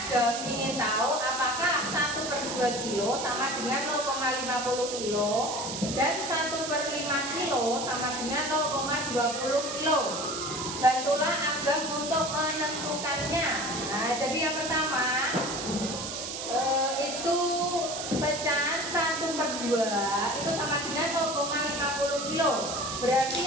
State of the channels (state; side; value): noise; right; hiss, 6 dB below the sound